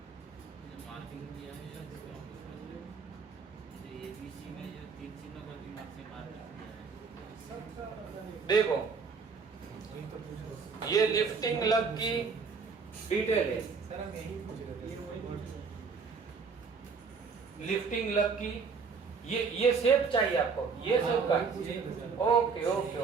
मार्किंग दिया है एबीसी में जो 3 चिन्हों का दिमाग से मार्किंग दिया है। देखो ये लिफ्टिंग लग की डिटेल है, सर हम यही पूछ रहे थे। लिफ्टिंग लग की ये शेप चाहिए आपको, ये शेप का। Okay okay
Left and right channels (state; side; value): quieter; left; 5.2 dB